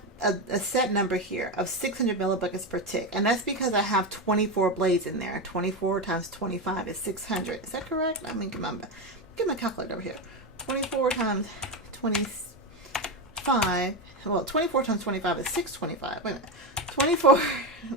a set number here of 600 millibuckets per tick, and that's because I have 24 blades in there. 24 times 25 is 600. Is that correct? Let me get my calculator over here. 24 times 25. Well, 24 times 25 is 625. Wait a minute. 24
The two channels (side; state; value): both; normal; correlation 0.14